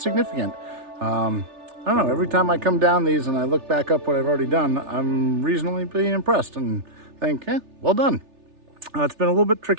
I don't know, every time I come down these and I look back up what I've already done, I'm reasonably impressed and think, well done. It's been a little bit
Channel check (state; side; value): late; left; 3.4 ms